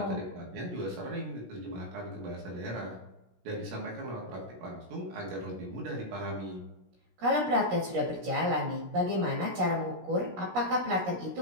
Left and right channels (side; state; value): left; late; 17 ms